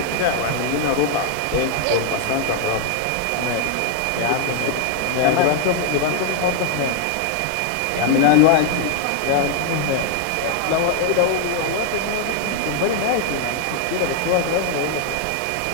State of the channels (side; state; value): both; different; correlation 0.00